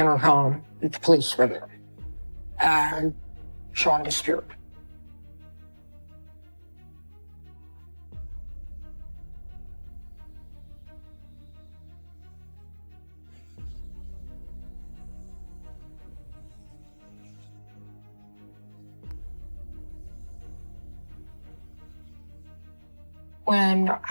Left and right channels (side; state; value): both; inverted; correlation -1.00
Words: that the police were there. And Sean disappeared. When